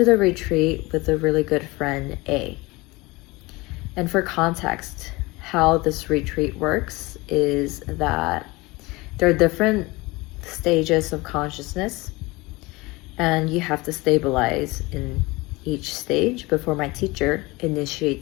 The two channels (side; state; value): right; quieter; 22.8 dB